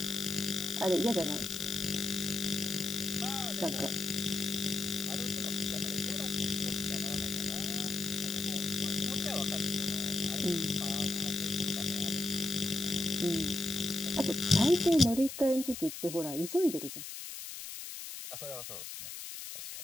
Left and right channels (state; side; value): noise; left; hiss, 9 dB below the sound